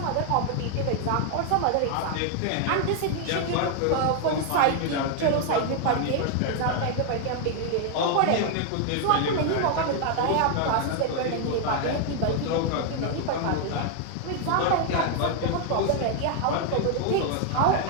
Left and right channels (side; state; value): both; different; correlation 0.00